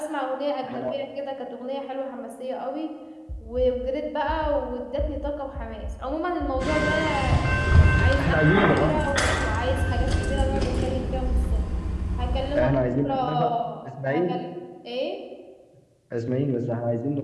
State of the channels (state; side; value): identical; both; correlation 1.00